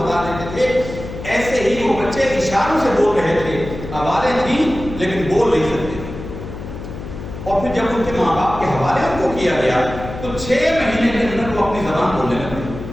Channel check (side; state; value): left; noise; hum, 10 dB below the sound